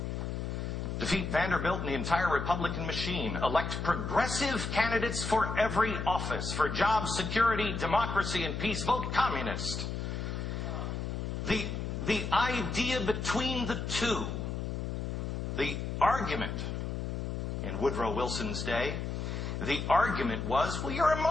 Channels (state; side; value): noise; left; hum, 3 dB below the sound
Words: defeat Vanderbilt and the entire Republican machine. Elect progressive candidates for every office. For jobs, security, democracy, and peace, vote communist. The idea between the two, the argument in Woodrow Wilson's day, the argument was, well, you're a